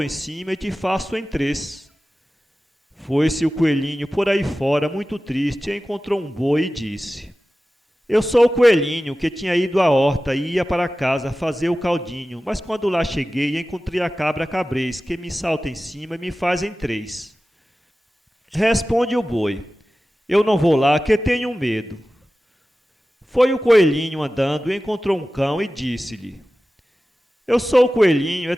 em cima e te faço em três." Foi-se o coelhinho por aí fora, muito triste, e encontrou um boi e disse: "Eu sou o coelhinho que tinha ido à horta e ia para casa fazer o caldinho, mas quando lá cheguei, encontrei a cabra cabrez, que me salta em cima e me faz em três." Responde o boi: "Eu não vou lá, que tenho medo." Foi o coelhinho andando e encontrou um cão e disse-lhe: "Eu sou o coelhinho,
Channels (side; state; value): both; normal; correlation 0.95